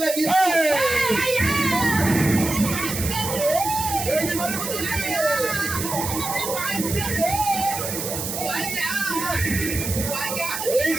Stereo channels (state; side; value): noise; right; hiss, 5 dB below the sound